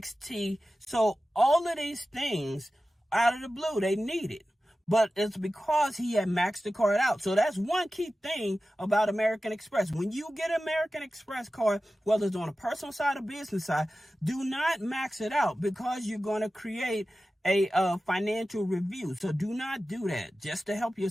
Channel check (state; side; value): normal; both; correlation 0.94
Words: So all of these things out of the blue, they needed. But it's because he had maxed the card out. So that's one key thing about American Express. When you get an American Express card, whether it's on a personal side or business side, do not max it out because you're going to create a financial review. So do not do that just to help